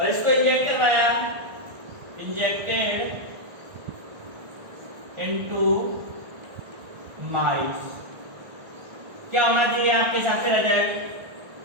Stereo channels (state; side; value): late; left; 1.5 ms